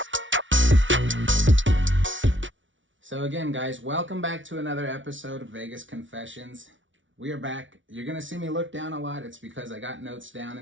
So again, guys, welcome back to another episode of Vegas Confessions. We are back. You're going to see me look down a lot. It's because I got notes down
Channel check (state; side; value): late; left; 0.56 ms